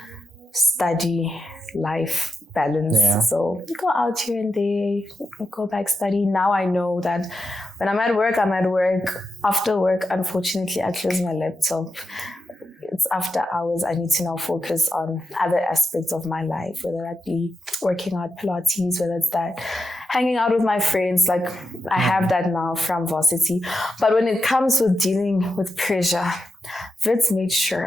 study life balance. Yeah. So go out here and there, go back study. Now I know that when I'm at work, I'm at work. After work, unfortunately, I close my laptop. It's after hours. I need to now focus on other aspects of my life, whether that be working out Pilates, whether it's that hanging out with my friends. Like I have that now from varsity. But when it comes with dealing with pressure, Wits made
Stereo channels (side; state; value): both; normal; correlation 0.87